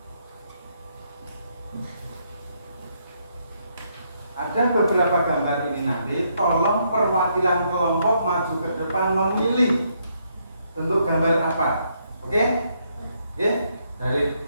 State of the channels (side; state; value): both; inverted; correlation -0.74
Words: Ada beberapa gambar ini nanti, tolong perwakilan kelompok maju ke depan memilih bentuk gambar apa. Oke? Oke? Dari